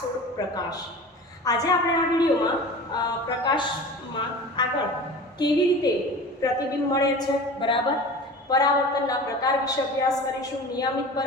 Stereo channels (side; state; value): both; normal; correlation 0.36